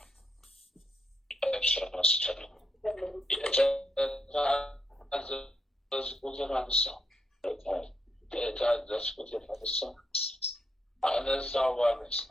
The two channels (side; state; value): both; normal; correlation 0.79